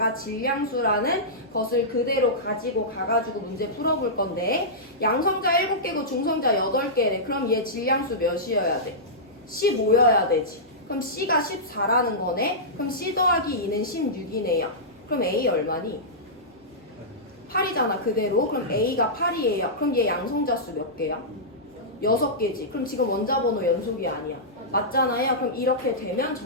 질량수라는 것을 그대로 가지고 가가지고 문제 풀어볼 건데 양성자 7개고 중성자 8개래. 그럼 얘 질량수 몇이어야 돼? 15여야 되지. 그럼 C가 14라는 거네. 그럼 C 더하기 2는 16이네요. 그럼 A 얼마니? 8이잖아 그대로. 그럼 A가 8이에요. 그럼 얘 양성자 수 몇 개야? 6개지. 그럼 지금 원자번호 연속이 아니야. 맞잖아요. 그럼 이렇게 되면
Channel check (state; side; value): normal; both; correlation -0.14